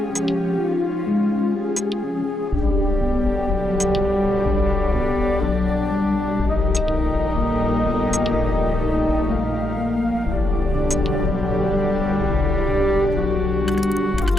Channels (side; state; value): both; normal; correlation 0.81